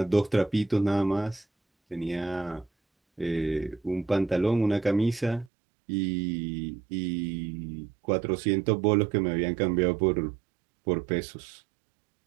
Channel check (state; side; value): drops out; left; at 5.5 s